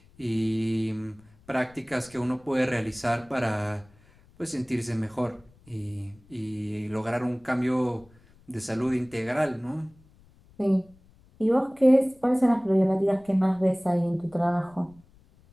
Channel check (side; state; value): left; noise; rumble, 28 dB below the sound